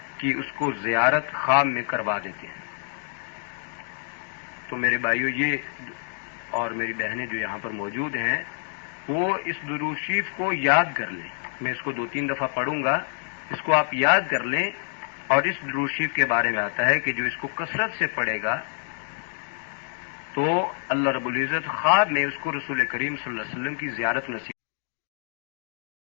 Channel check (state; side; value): silent; right; digital silence